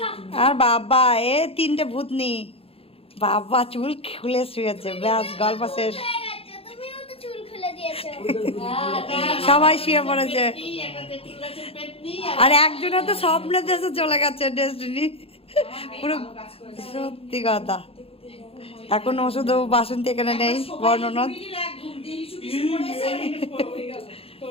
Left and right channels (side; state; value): right; late; 0.28 ms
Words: আর বাবা এ তিনটে ভূতনি বাবা চুল খুলে শুয়েছে, ব্যাস গল্প শেষ। তুমিও তো চুল খুলে দিয়েছো। সবাই শুয়ে পড়েছে। আর একজনের তো স্বপ্নের দেশে চলে গেছে ডেস্টিনি পুরো। সত্যি কথা এখন ওষুধ বাসন্তী এখানে নেই বর্ণনাথ।